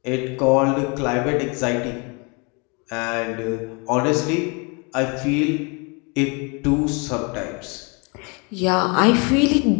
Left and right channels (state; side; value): quieter; right; 32.0 dB